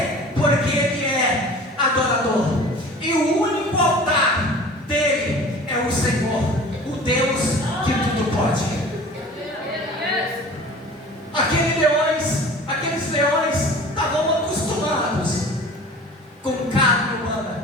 Porque ele é adorador. E o único altar dele é o Senhor, o Deus que tudo pode. Aqueles leões estavam acostumados com carne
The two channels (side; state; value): both; normal; correlation 0.42